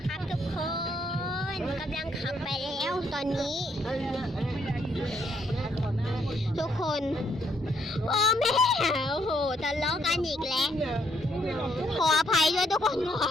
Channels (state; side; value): normal; both; correlation 0.72